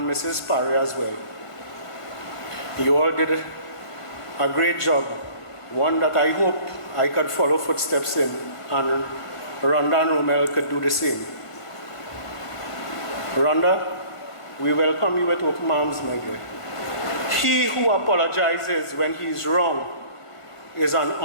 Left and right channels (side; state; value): right; late; 1.6 ms